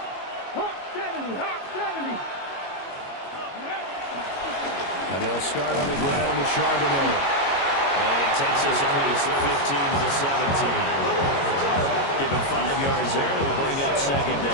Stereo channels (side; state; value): right; late; 22 ms